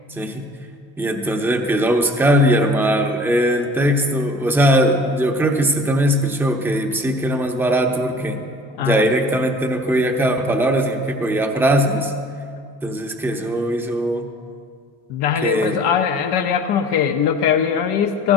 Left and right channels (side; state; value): both; normal; correlation 0.48